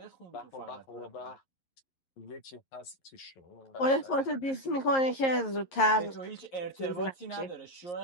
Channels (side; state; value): right; late; 11 ms